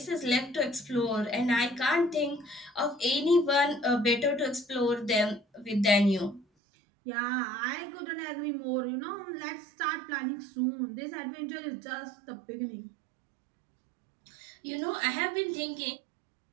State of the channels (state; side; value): drops out; left; at 6.5 s